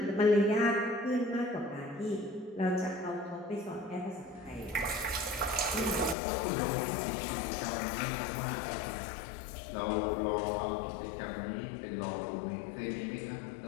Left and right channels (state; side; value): drops out; right; at 6.2 s